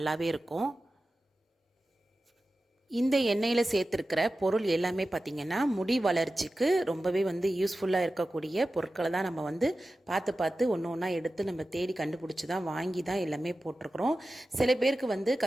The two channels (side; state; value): both; normal; correlation 0.94